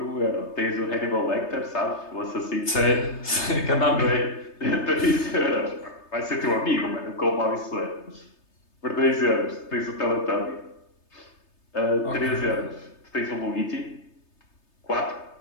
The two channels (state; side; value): late; right; 3.3 ms